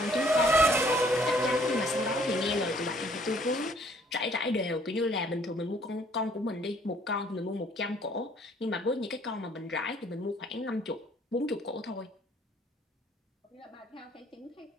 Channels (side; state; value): both; normal; correlation 0.61